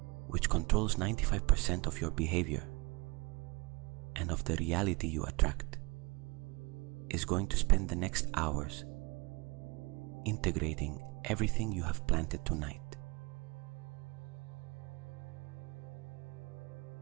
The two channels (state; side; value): quieter; left; 26.9 dB